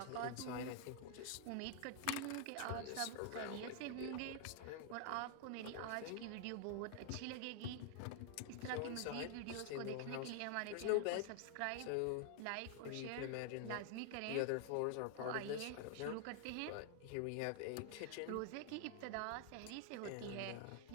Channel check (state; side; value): different; both; correlation 0.00